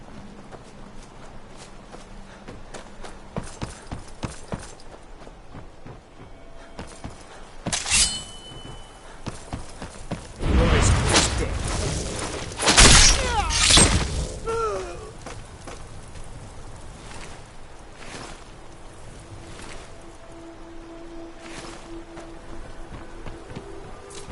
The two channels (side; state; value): both; identical; correlation 1.00